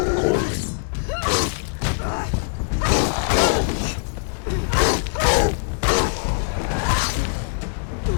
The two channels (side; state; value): right; silent; 64 dB below the other